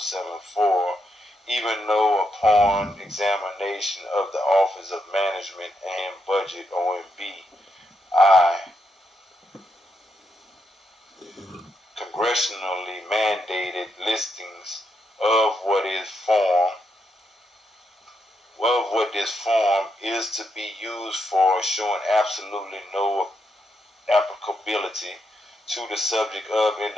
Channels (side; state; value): both; normal; correlation 0.82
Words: even though upon examination of the Office of Management and Budget, OMB, congressionally mandated listings of what this form is to be used for, showing absolutely no applicability to the subject of